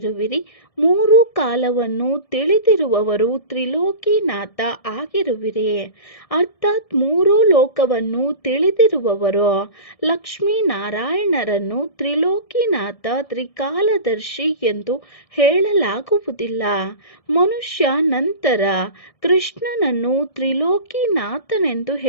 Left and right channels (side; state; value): right; late; 1.7 ms